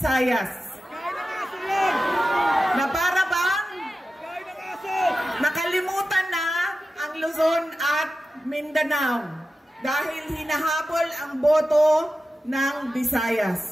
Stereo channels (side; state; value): both; normal; correlation 0.93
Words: Na para bang nakalimutan na ang Luzon at Mindanao dahil hinahabol ang boto ng